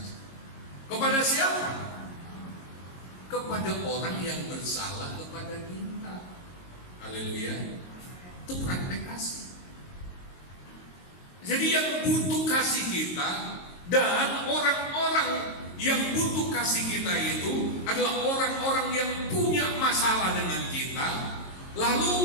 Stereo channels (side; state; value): right; late; 22 ms